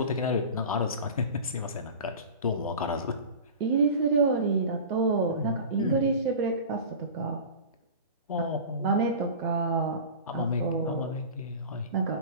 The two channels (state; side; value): inverted; both; correlation -0.34